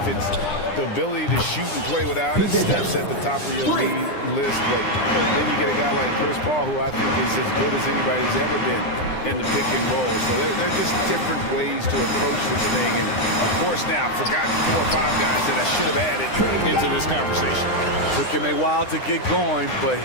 it's the ability to shoot and play without it, Steph's at the top of your league list. But then you get a guy like Chris Paul, who I think is as good as anybody's ever been in the pick and roll. So they're just different ways to approach this thing. And of course, now I've forgotten 4 or 5 guys that I should have added into this conversation. Took him a while to get going, but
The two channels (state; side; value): late; right; 9.9 ms